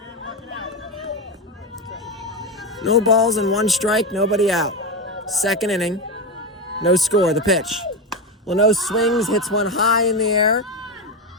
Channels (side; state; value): both; normal; correlation 0.15